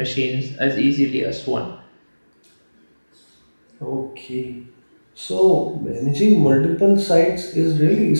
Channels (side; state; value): both; inverted; correlation -1.00